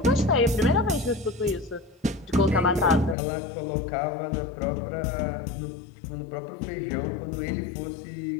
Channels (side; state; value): right; drops out; at 3.2 s